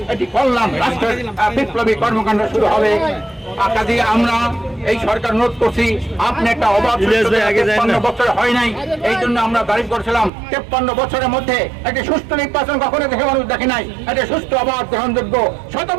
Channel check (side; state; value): left; drops out; at 10.3 s